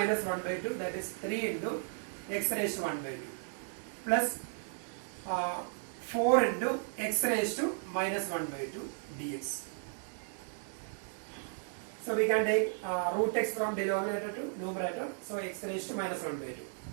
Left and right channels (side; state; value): left; silent; 55 dB below the other